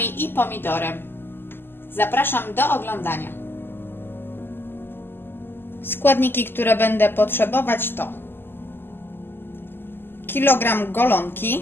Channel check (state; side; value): late; right; 0.10 ms